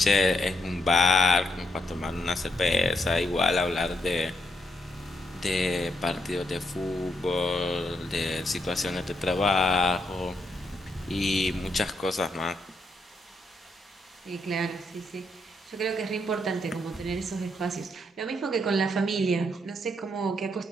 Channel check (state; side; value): normal; both; correlation 0.78